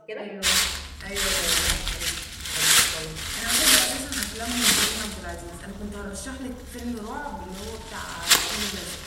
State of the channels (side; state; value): both; identical; correlation 1.00